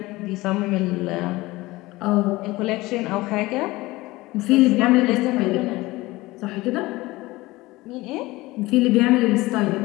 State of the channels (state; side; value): quieter; right; 20.0 dB